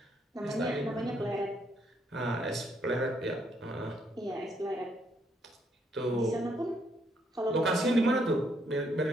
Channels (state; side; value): normal; both; correlation 0.72